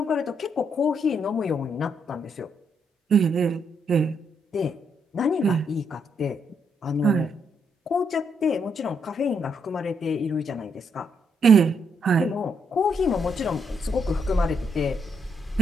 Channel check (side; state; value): both; normal; correlation 0.76